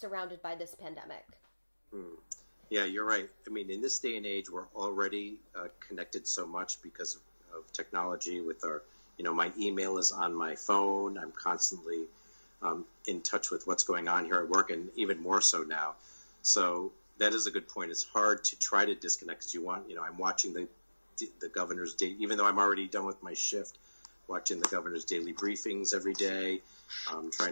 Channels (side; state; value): both; inverted; correlation -1.00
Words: by this pandemic? Yeah, you're right. I mean, in this day and age, we're already connected so much because of technology with our, my email is on my phone. I'm constantly in touch with what's going on here at work, and even more so now. So that is a good point. It's hard to try to disconnect because I'm watching the governor's day, even though I'm already done with my shift, watching the governor's daily briefings every day,